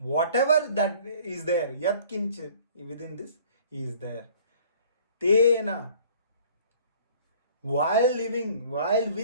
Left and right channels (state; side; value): inverted; both; correlation -0.52